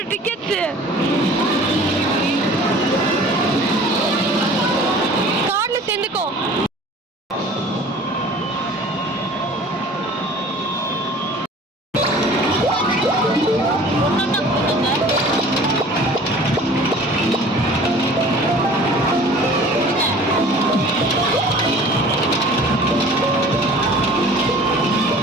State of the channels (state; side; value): normal; both; correlation 0.46